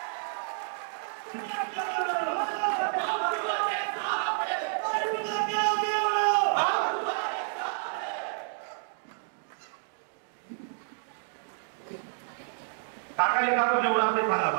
काकाने काका निवडा ते सांगा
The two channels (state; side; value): silent; left; digital silence